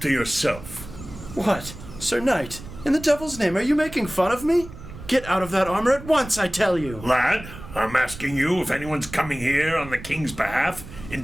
to yourself. What? Sir Knight, in the devil's name, are you making fun of me? Get out of that armor at once, I tell you. Lad, I'm asking you if anyone's coming here on the king's behalf,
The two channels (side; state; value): right; noise; rumble, 14 dB below the sound